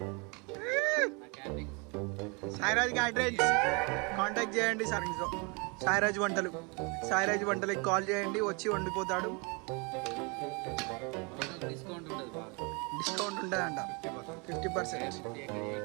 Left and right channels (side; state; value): left; quieter; 31.1 dB